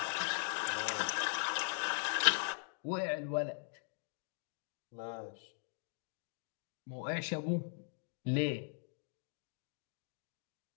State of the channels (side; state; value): right; silent; digital silence